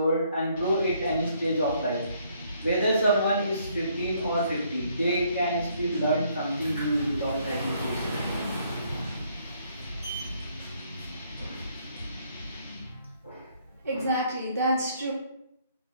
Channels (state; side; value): inverted; both; correlation -0.67